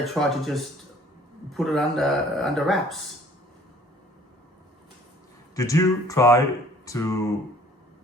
try to just put it under wraps. Did you try to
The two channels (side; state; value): both; normal; correlation 0.55